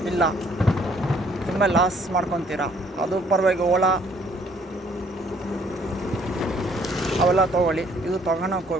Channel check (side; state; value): both; normal; correlation 0.63